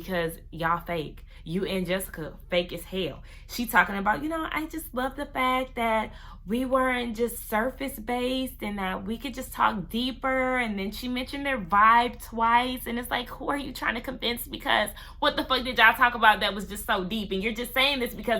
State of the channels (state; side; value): identical; both; correlation 1.00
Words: y'all fake. You and Jessica fake as hell. She talking about, I just love the fact that we weren't just surface based and that we could just talk deeper. And then she mentioned their vibe twice. And it's like, who are you trying to convince? Because what the fuck did y'all talk about that was just so deep? And you're just saying this